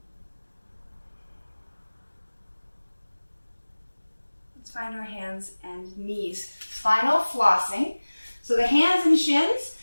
Let's find our hands and knees. Spinal flossing. So the hands and shins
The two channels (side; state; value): both; inverted; correlation -1.00